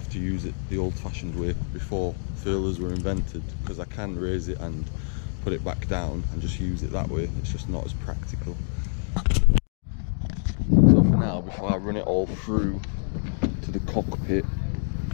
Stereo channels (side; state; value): right; silent; 61 dB below the other